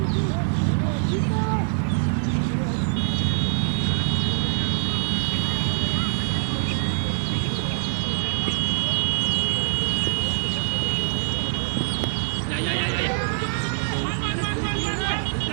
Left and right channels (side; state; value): left; silent; digital silence